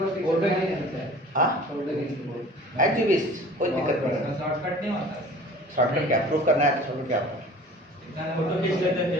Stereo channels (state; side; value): normal; both; correlation 0.45